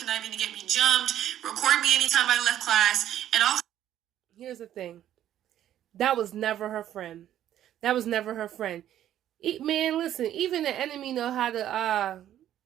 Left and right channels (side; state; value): left; quieter; 11.6 dB